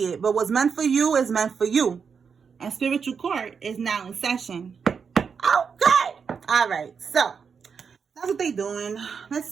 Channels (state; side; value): quieter; left; 6.1 dB